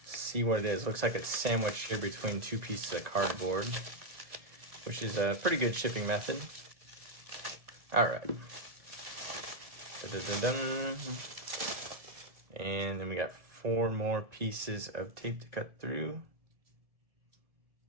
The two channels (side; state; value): left; late; 1.7 ms